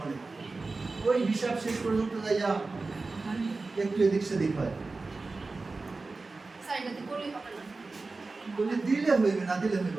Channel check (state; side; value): quieter; left; 3.7 dB